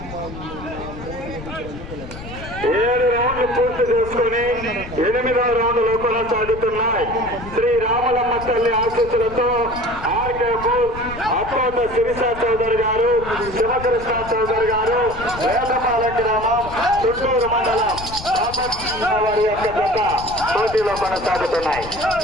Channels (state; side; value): noise; left; rumble, 13 dB below the sound